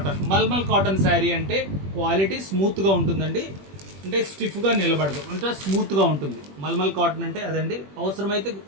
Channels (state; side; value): late; left; 21 ms